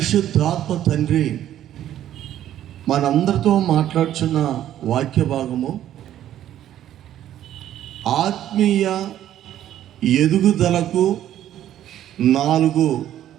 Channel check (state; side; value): quieter; left; 11.8 dB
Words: తండ్రి మనందరితో మాట్లాడుచున్న వాక్య భాగము ఆత్మీయ ఎదుగుదలకు 4